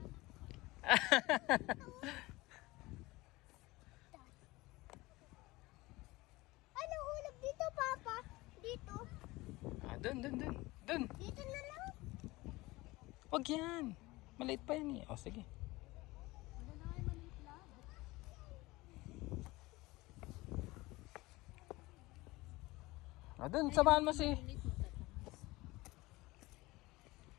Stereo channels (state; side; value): quieter; right; 20.8 dB